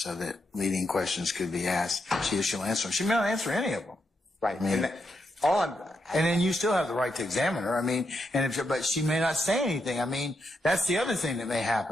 leading questions could be asked. She'll answer them. She may not answer any of them. Right. I mean, and then you still have the right to examine her. I mean, but she may not say anything. I mean, that's the other thing that may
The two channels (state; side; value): normal; both; correlation 0.82